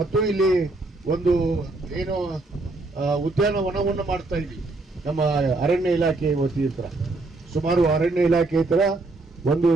ಇಲ್ಲಿ ಒಂದು ಏನು ಉದ್ಯಾನವನವನ್ನು ಮಾಡ್ತಾ ಇದ್ದೀವಿ ನಮ್ಮ ಅರಣ್ಯ ಇಲಾಖೆ ವತಿಯಿಂದ. ಸುಮಾರು ಅರಣ್ಯ ಇಲಾಖೆ ತರ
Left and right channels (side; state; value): left; quieter; 3.1 dB